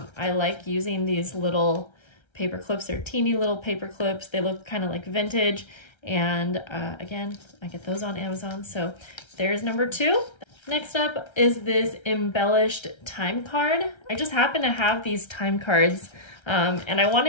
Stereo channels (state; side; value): late; right; 1.3 ms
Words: like using these little paper clips. They're teeny little paper clips. They look kind of like vintage. And again, I get those on Amazon. So there's number 2. Next up is this embellished time card. I just happen to have these time cards and I